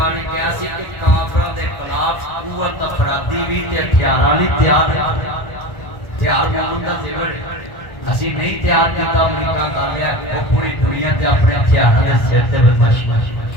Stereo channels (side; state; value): right; late; 1.4 ms